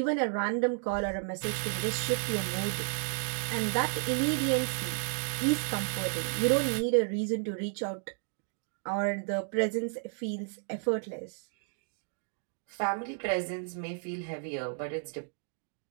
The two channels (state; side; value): silent; left; 56 dB below the other